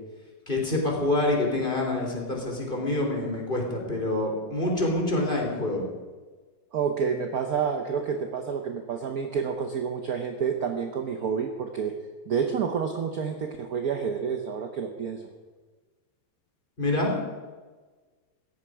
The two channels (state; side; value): late; right; 2.5 ms